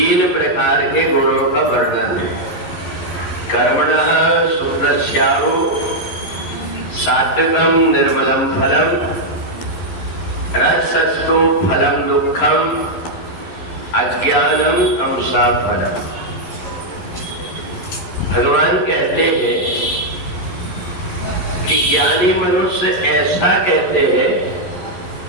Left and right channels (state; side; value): late; right; 11 ms